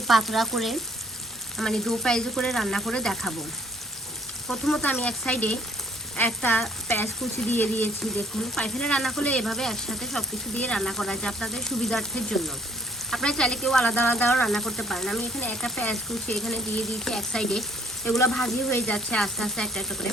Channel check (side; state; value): both; normal; correlation 0.62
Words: পাতলা করে মানে দো পেঁয়াজু করে রান্না করে দেখাবো। প্রথমত আমি এক সাইডে একটা পেঁয়াজ কুচি দিয়ে দিয়েছি। দেখুন, পাইফেলে রান্না করলে এভাবে একসাথে সব কিছু দিয়ে রান্না করা যায় আপনাদের সুবিধার্থের জন্য। আপনারা চাইলে কেউ আলাদা আলাদাও রান্না করতে পারেন। আমি এখানে একটা পেঁয়াজ কুচি এখানে দিয়ে দিয়েছি এক সাইডে। এগুলো ভাজি হয়ে যাচ্ছে আস্তে আস্তে একটা একটা করে।